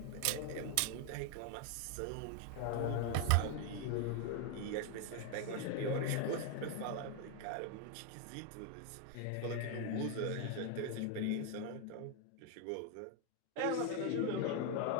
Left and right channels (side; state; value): both; different; correlation 0.01